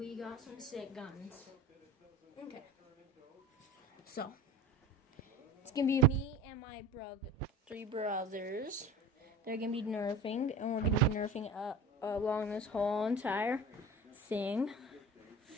got some sick guns. Okay. So, it's going to be me and my three brothers. They're going to be nerfing, and we're going to be nerfing along this whole entire thing.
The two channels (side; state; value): both; normal; correlation 0.36